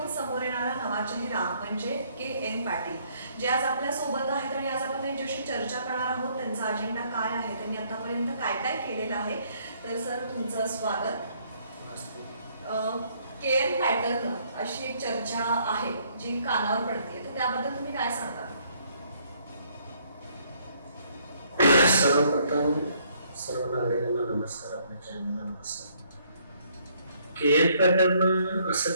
समोर येणारा नवा चेहरा म्हणजे के.एन. पाटील, जे आज आपल्या सोबत आहेत आणि आज आपण त्यांच्याशी चर्चा करणार आहोत. त्यांचा अजेंडा काय आहे, त्यांनी आतापर्यंत काय काय केलेलं आहे. तर सर, तुमचं स्वागत. के.एन. पॅटर्न अशी एक चर्चा आहे जी कानावर पडते, तर त्याबद्दल तुम्ही काय सांगता? सर्वप्रथम सर्व नागरिकांना नमस्कार, आपल्या चॅनलला नमस्कार. के.एन. पॅटर्न असं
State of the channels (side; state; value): both; inverted; correlation -0.67